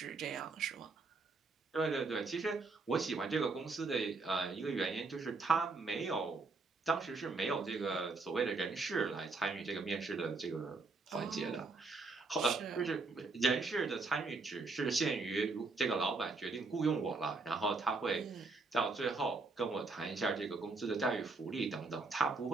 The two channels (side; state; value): left; quieter; 3.8 dB